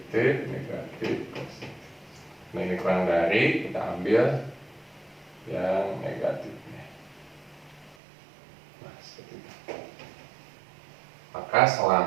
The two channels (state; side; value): drops out; left; at 8.0 s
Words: negatif, positif. Nah, ini kurang dari, kita ambil yang negatifnya. Nah, seperti itu. Maka